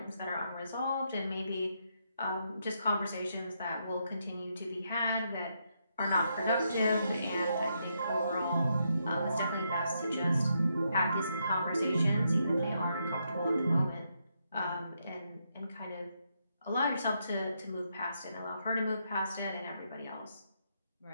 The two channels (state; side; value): inverted; both; correlation -0.79